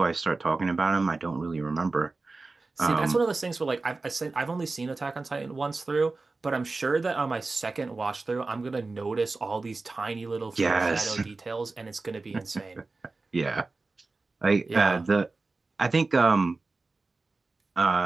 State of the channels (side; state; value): left; quieter; 3.6 dB